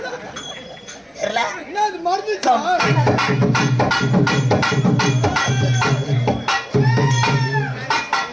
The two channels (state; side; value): identical; both; correlation 1.00